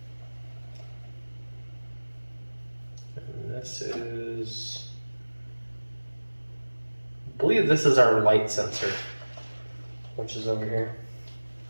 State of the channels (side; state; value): both; inverted; correlation -1.00